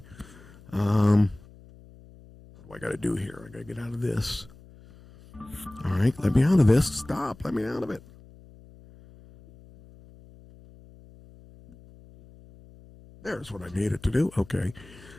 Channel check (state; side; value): noise; left; hum, 22 dB below the sound